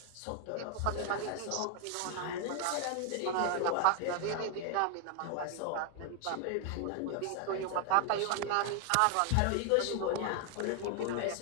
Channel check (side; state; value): both; different; correlation 0.00